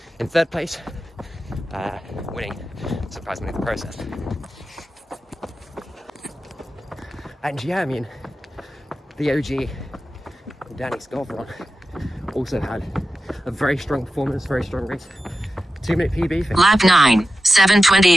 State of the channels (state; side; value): normal; both; correlation 0.93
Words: in third place, winning surprisingly the process. And yeah, I mean, the OG, Danny Scarveron, also had a very strong performance, very strong race. 2-minute PB. For Lap 9,